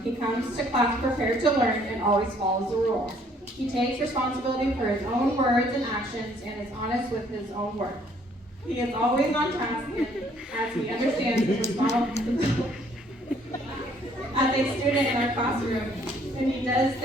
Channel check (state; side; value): normal; both; correlation 0.63